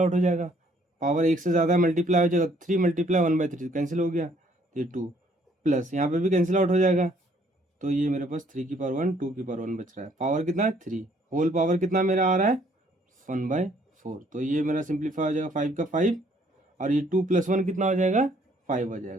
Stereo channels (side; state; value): both; normal; correlation 0.63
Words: हो जाएगा, पावर एक से ज़्यादा मल्टीप्लाई हो जाएगा, 3 मल्टीप्लाई 1/3 कैंसिल हो गया, तो ये 2 प्लस यहाँ पे भी कैंसिल आउट हो जाएगा, तो ये मेरे पास 3 की पावर 1 2 की पावर 1 बच रहा है, पावर कितना है 3, होल पावर कितना मेरा आ रहा है 1/4, तो ये मेरा सिंप्लीफाई हो जाएगा 5 का 5, और ये 2 + 1 कितना हो जाएगा 5 हो